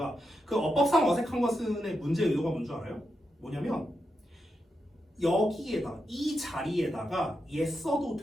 그 어법상 어색한 것은의 문제 의도가 뭔 줄 알아요? 뭐냐면 여기에다 이 자리에다가 얘 써도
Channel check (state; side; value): normal; both; correlation 0.86